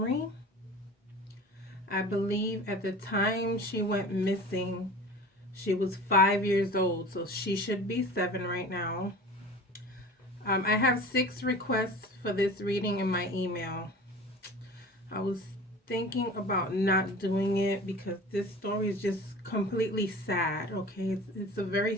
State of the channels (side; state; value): both; normal; correlation 0.39